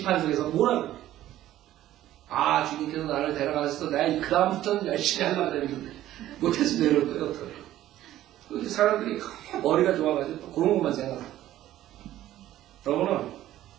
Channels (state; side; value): quieter; left; 13.6 dB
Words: 뭐라고? 아, 주님께서 나를 데려가셔서 내가 그 다음부터는 열심히 하려고 그랬는데 못해서 내려올 거예요. 어떡해. 사람들이 머리가 좋아가지고 또 그런 것만 생각해요. 여러분은